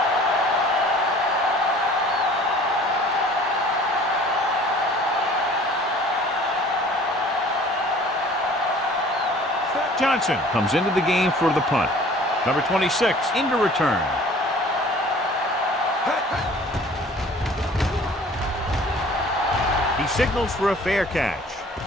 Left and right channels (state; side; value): normal; both; correlation 0.49